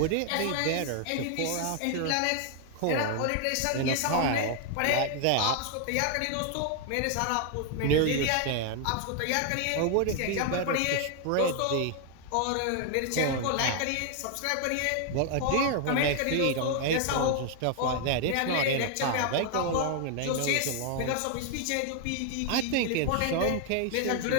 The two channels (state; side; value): different; both; correlation 0.00